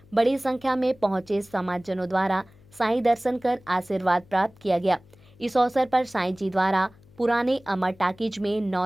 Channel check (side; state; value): left; noise; hum, 27 dB below the sound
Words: बड़ी संख्या में पहुंचे समाजजनों द्वारा साईं दर्शन कर आशीर्वाद प्राप्त किया गया। इस अवसर पर साईं जी द्वारा पुराने अमर टाकीज में